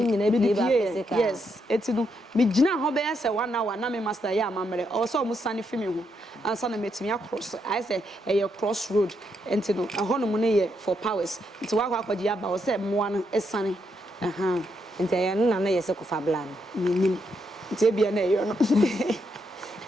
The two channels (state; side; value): normal; both; correlation 0.79